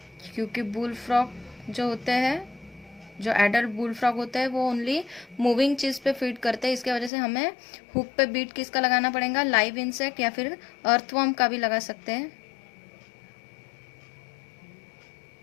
क्योंकि बुल फ्रॉग जो होते हैं, जो एडल्ट बुल फ्रॉग होते हैं, वो ओनली मूविंग चीज़ पे फीड करते हैं। इसके वजह से हमें हुक पे बीट किसका लगाना पड़ेगा, लाइव इंसेक्ट या फिर अर्थवर्म का भी लगा सकते हैं।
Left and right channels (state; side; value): drops out; right; at 7.1 s